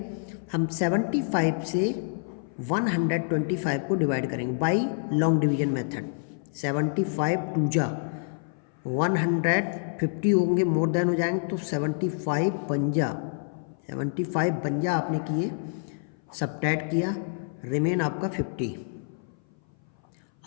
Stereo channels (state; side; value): silent; right; 58 dB below the other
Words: हम 75 से 125 को डिवाइड करेंगे बाई लॉन्ग डिवीजन मेथड। 75 2 जा 150 होंगे, मोर देन हो जाएंगे, तो 75 पंजा 75 52 आपने किए, सबट्रैक्ट किया, रिमेन आपका 50।